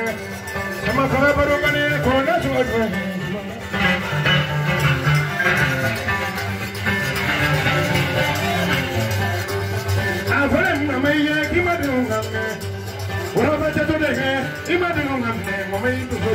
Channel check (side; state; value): both; identical; correlation 1.00